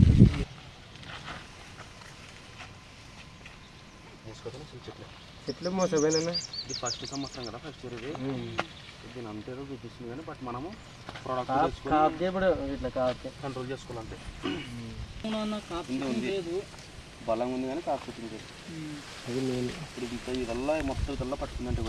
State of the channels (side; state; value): both; identical; correlation 1.00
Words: చెట్లు మోసపోయినా ఇది ఫస్ట్ సంవత్సరం కదా, ఫస్ట్ ఇయర్ ఇది. దీని అంతేదో చూపిస్తుంది కానీ బట్ మనము ప్రోడక్ట్ ఇట్లా కాదు కంట్రోల్ చేసుకోవాలంటే ఉంది బలం ఉంది కానీ కాకపోతుంది. అది నేను ఇప్పుడు ఇదల్లా మొత్తం ఇదల్లా పట్టుకుందంటే